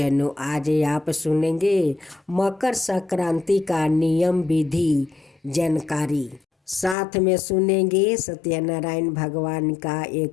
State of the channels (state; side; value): drops out; right; at 7.0 s